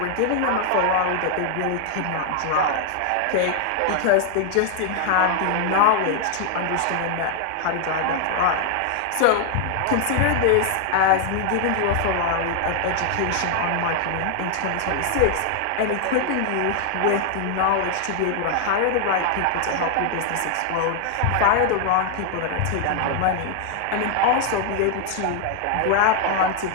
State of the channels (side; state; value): both; different; correlation 0.00